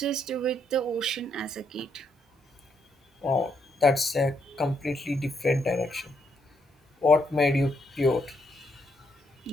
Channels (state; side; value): normal; both; correlation 0.75